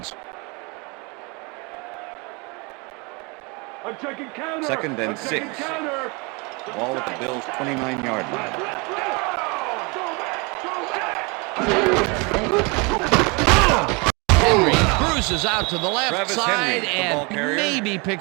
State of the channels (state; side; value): quieter; left; 29.5 dB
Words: I'm checking counter. Second and I'm checking 6. counter. Ball at the Bills' 29-yard line. Henry cruises out to the left Travis side Henry, the ball and carrier. maybe